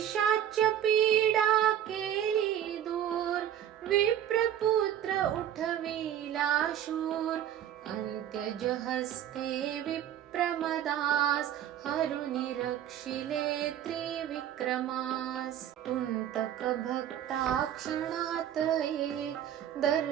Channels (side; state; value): left; quieter; 10.6 dB